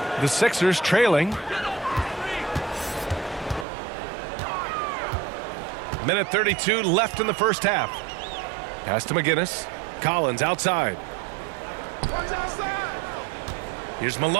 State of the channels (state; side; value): drops out; left; at 3.7 s